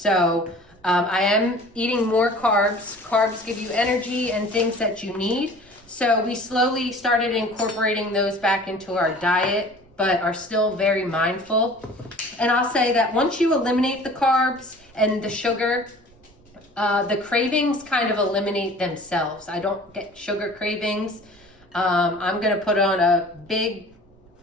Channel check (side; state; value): right; noise; rumble, 28 dB below the sound